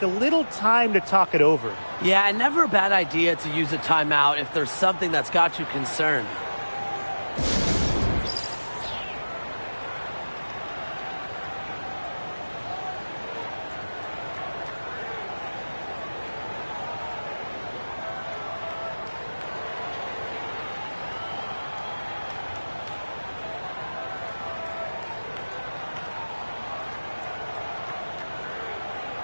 a little time to talk it over. Yeah, and never a bad idea to use a timeout if there's something that's got you concerned.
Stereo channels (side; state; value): both; inverted; correlation -1.00